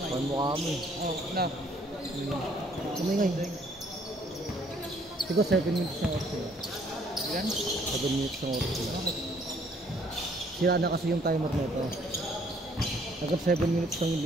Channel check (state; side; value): normal; both; correlation 0.63